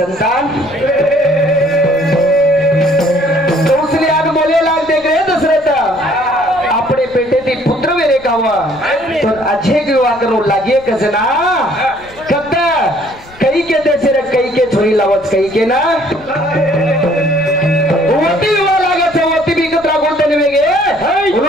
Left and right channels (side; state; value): left; noise; rumble, 23 dB below the sound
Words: तो उसने आग बोले लाग देख रहे दशरथ अपने बेटे दी पुत्र मेरे का हुआ तो अच्छे की हुआ करो लागिए कसना कब कई के देश रे कई के छोरी लावत कई के ना वोटी हुआ लागत है वोटी भी कतरा बोलते नहीं वेगे